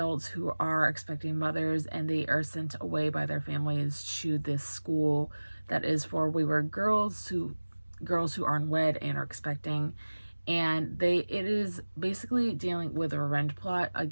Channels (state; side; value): inverted; both; correlation -1.00